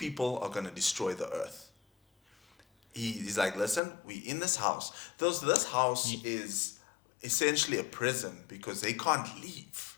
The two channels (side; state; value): right; drops out; at 3.8 s